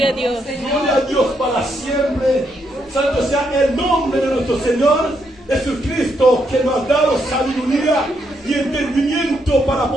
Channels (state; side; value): normal; both; correlation 0.78